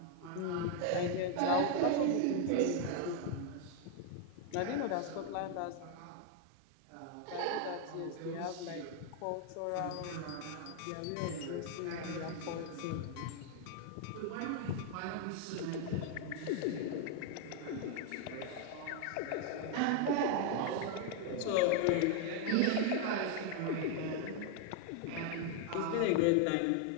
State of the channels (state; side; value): different; both; correlation 0.00